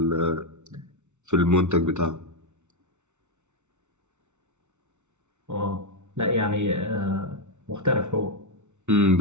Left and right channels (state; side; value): late; left; 0.83 ms